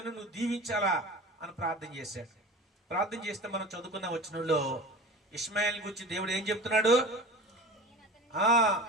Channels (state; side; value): normal; both; correlation 0.36